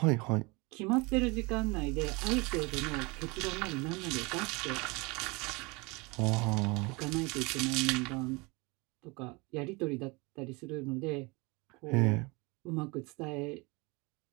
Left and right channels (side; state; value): left; quieter; 26.6 dB